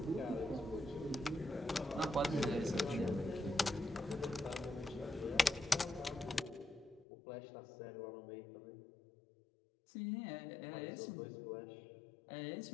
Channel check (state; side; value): drops out; right; at 7.1 s